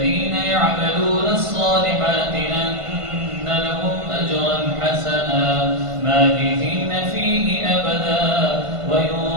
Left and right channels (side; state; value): left; late; 1.5 ms